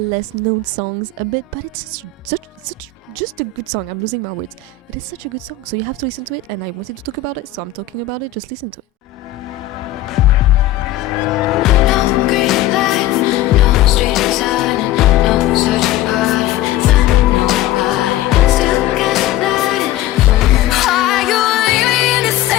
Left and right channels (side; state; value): right; quieter; 10.4 dB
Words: known songs a bit, but it's such just a good song. I'm losing my words. It is such a good song, so you have to listen to it, and I wanted to talk about it, so I'm talking about it. Just listen to it. no green light, no street design, no searching party, finding nobody, still got lighting for me. Are you leaving in a